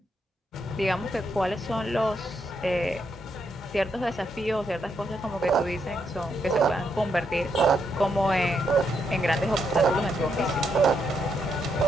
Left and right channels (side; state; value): both; normal; correlation 0.78